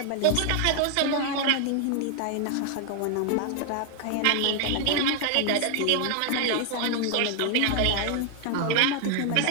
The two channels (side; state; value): both; different; correlation 0.00